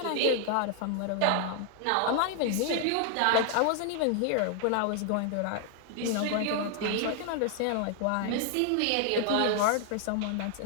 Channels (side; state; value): both; different; correlation 0.00